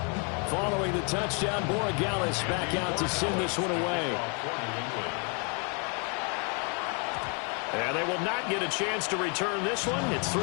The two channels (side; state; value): right; quieter; 37.1 dB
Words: Following the touchdown, Borregales back out to send this one away. And they will not get a chance to return this one. It's